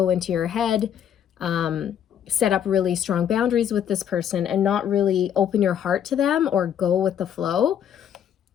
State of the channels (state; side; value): quieter; right; 9.3 dB